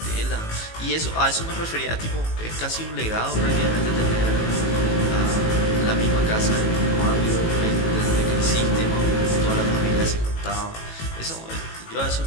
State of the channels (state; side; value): late; right; 18 ms